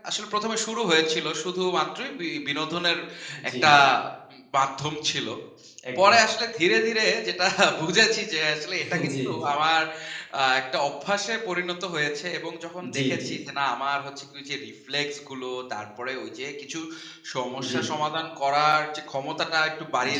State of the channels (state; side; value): identical; both; correlation 1.00